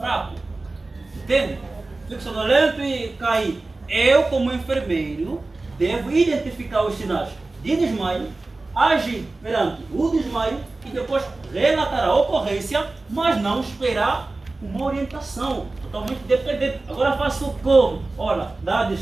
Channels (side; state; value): left; quieter; 3.3 dB